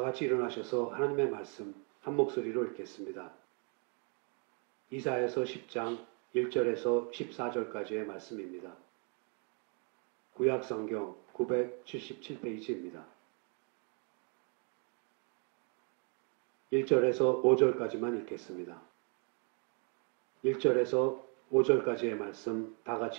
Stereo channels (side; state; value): left; quieter; 38.5 dB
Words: 일어나셔서 하나님의 말씀 한 목소리로 읽겠습니다. 이사야서 10장 1절에서 14절까지의 말씀입니다. 구약성경 977페이지입니다. 1절에서 5절까지만 읽겠습니다. 1절에서 5절까지의 말씀 다